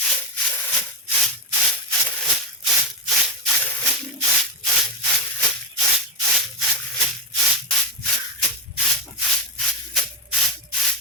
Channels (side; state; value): both; normal; correlation 0.10